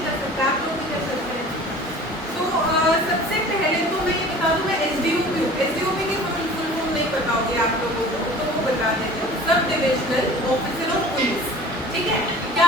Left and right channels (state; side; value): normal; both; correlation 0.44